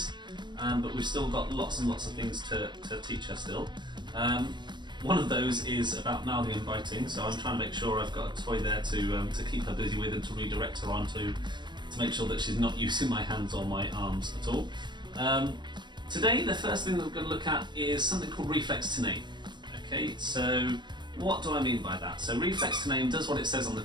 but we've still got lots and lots of things to teach her still. One of those is about mouthing and biting, so I'm trying to make sure I've got a toy there to keep her busy with and to redirect her onto, to make sure that she's not using my hands or my arms at all. Today, the first thing that we're going to look at is something called Reflex to Name. Okay, so what do I mean by that? So Reflex to Name does what it says on the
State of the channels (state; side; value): late; left; 0.22 ms